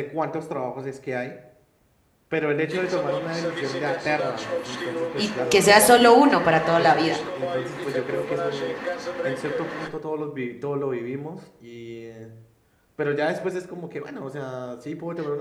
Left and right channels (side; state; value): both; identical; correlation 1.00